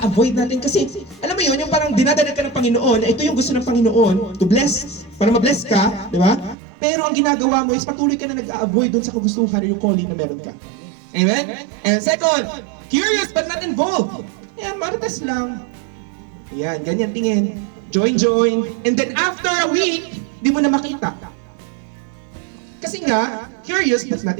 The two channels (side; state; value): left; drops out; at 6.6 s